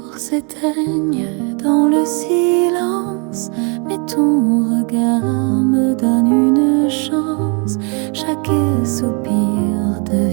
s'éteignent dans le silence, mais ton regard me donne une chance. Chaque soupir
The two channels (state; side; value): quieter; left; 35.1 dB